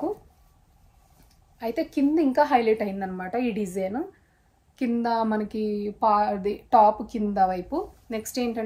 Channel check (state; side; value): identical; both; correlation 1.00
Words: అయితే కింద ఇంకా హైలైట్ అయిందనమాట ఈ డిజైన్. కింద మనకి టాప్ కింద వైపు. నెక్స్ట్